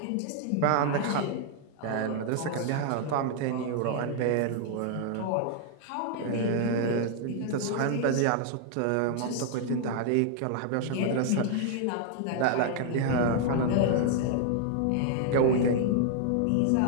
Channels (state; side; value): different; both; correlation 0.00